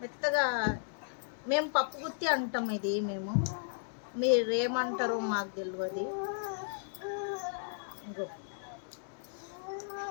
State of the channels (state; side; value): silent; right; digital silence